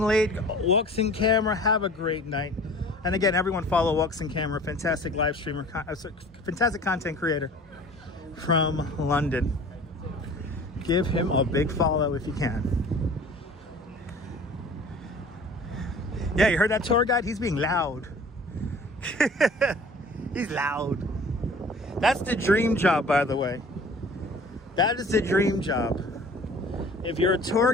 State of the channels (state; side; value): normal; both; correlation 0.46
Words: late. Walks in Camera, have a great night. And again, everyone follow Walks in Camera, fantastic live streamer, fantastic content creator from London. Give him a big follow if you can. Yeah, you heard that tour guide? He's being loud. He's loud. That's the dream job, by the way. That is the dream job. If you're a tour